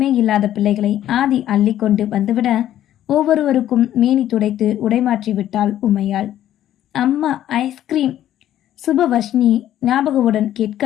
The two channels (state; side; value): quieter; right; 12.1 dB